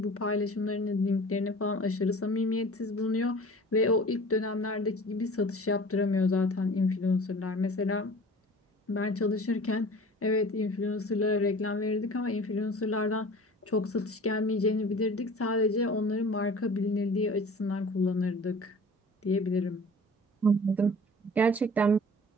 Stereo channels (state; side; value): normal; both; correlation 0.43